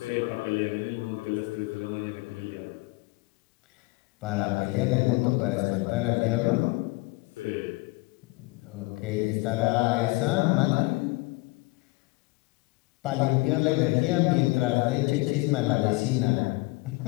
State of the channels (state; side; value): quieter; right; 24.1 dB